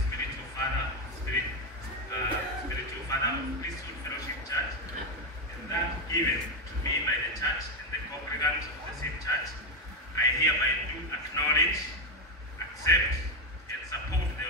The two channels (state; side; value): normal; both; correlation 0.09